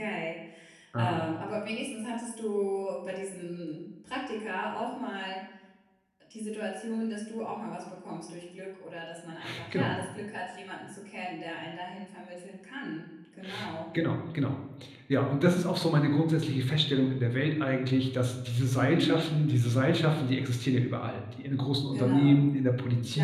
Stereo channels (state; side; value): identical; both; correlation 1.00